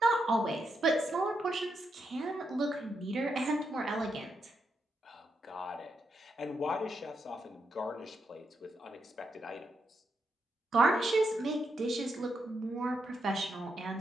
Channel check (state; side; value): normal; both; correlation 0.82